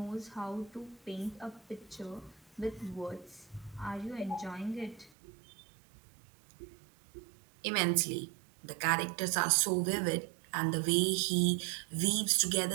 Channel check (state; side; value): drops out; left; at 5.1 s